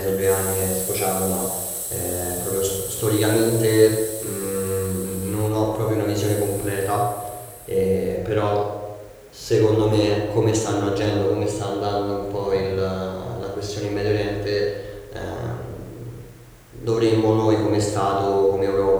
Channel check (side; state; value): both; identical; correlation 1.00